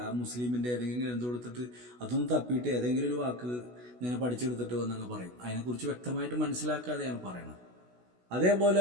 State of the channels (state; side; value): late; left; 16 ms